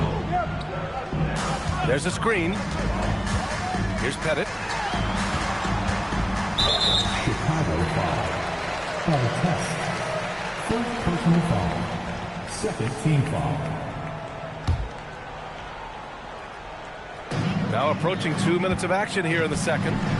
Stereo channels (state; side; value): identical; both; correlation 1.00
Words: There's a screen. Here's Pettit. Chicago foul. On test. First personal foul. Second team foul. Now approaching 2 minutes of action here in the second.